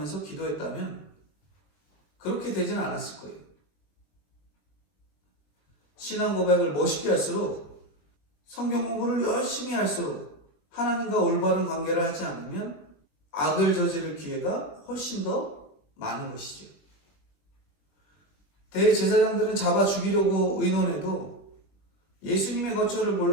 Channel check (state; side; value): late; right; 20 ms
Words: 기도했다면 그렇게 되지는 않았을 거예요. 신앙 고백을 멋있게 할수록, 성경 공부를 열심히 할수록 하나님과 올바른 관계를 하지 않으면 악을 저지를 기회가 훨씬 더 많은 것이죠. 대제사장들은 잡아 죽이려고 의논해도 예수님의 거처를